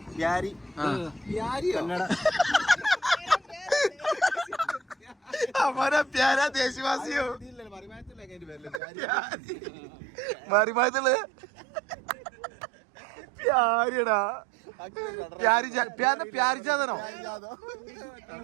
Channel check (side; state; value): left; drops out; at 8.8 s